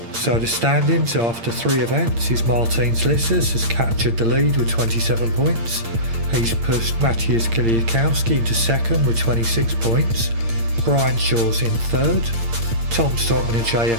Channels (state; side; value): late; left; 8.7 ms